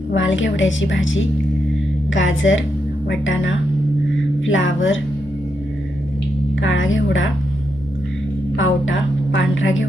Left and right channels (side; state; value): both; normal; correlation 0.83